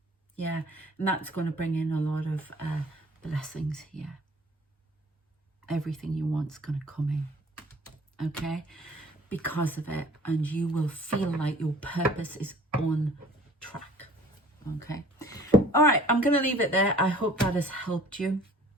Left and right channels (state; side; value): normal; both; correlation 0.50